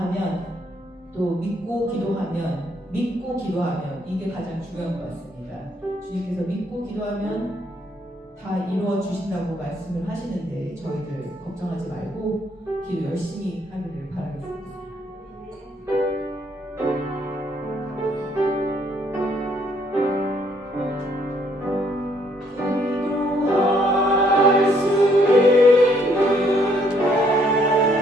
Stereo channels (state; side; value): normal; both; correlation 0.68